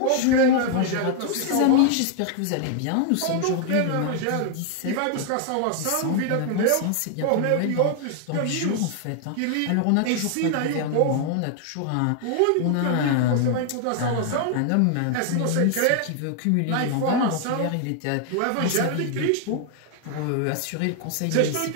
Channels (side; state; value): both; different; correlation 0.00